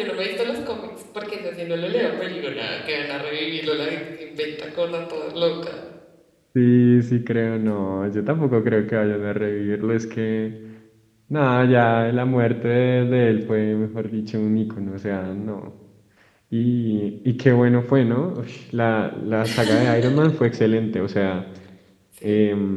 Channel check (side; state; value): both; identical; correlation 1.00